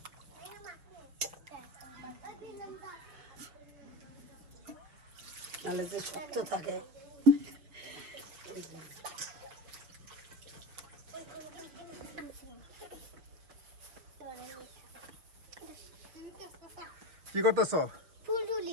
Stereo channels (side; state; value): left; late; 6.1 ms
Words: নাহলে যে শক্ত থাকে। কি করতেছ?